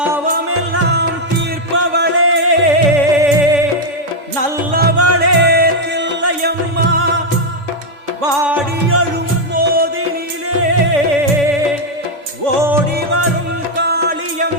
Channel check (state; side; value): late; left; 3.5 ms